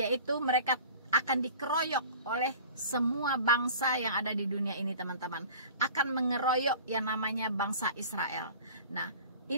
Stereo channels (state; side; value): inverted; both; correlation -0.42